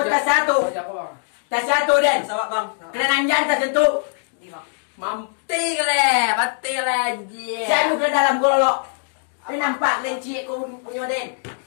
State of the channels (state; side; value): silent; right; digital silence